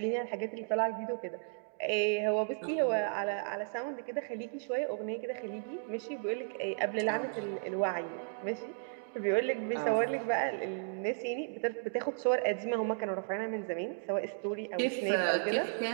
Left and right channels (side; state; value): left; silent; digital silence